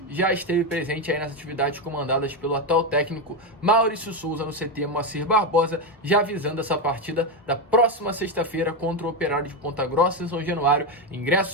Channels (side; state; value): both; normal; correlation 0.09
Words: já esteve presente aí nas atividades comandadas pelo atual técnico Maurício Souza no CT Moacir Barbosa, já visando essa partida da próxima sexta-feira contra o Operário de Ponta Grossa em São Januário. Ingressos